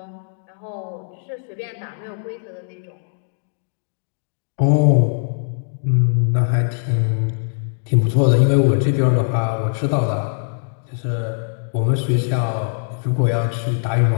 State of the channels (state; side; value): silent; right; digital silence